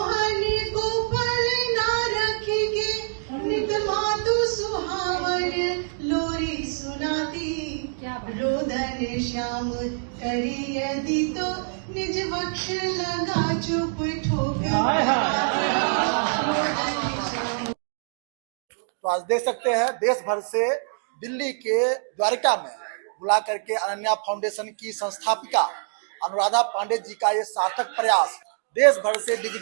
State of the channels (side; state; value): left; silent; digital silence